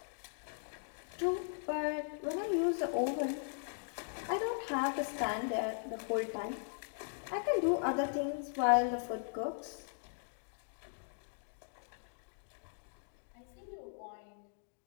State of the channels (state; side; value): silent; right; digital silence